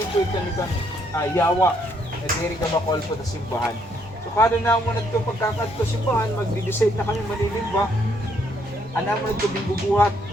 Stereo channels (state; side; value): normal; both; correlation 0.70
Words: ko ito nito yawa. Nadiri ka makol po na simbahan. So kada na mo na ito pagkakad ko simbahan, magdi-decide na kami manilimba. Anak mo na ito bubuhat.